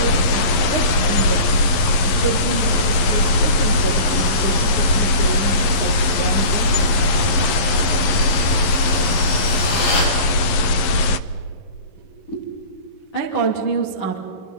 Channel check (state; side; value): late; right; 11 ms